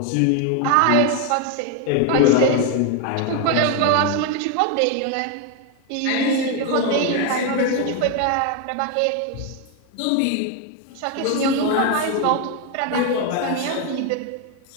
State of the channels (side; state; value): both; different; correlation 0.01